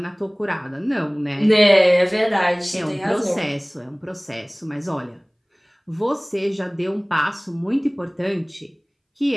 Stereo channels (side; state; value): both; identical; correlation 1.00